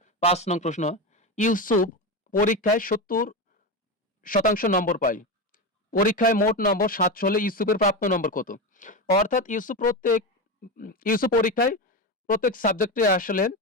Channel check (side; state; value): both; normal; correlation 0.17